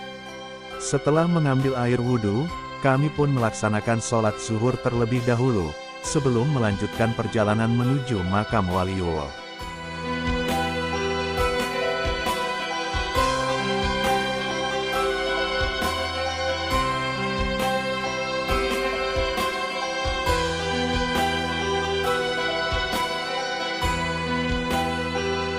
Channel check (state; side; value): identical; both; correlation 1.00